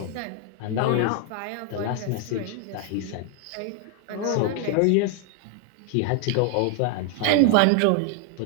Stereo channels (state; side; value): different; both; correlation 0.00